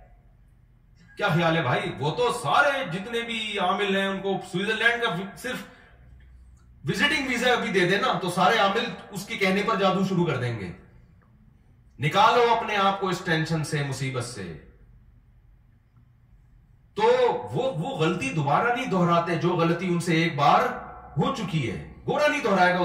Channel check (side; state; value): both; identical; correlation 1.00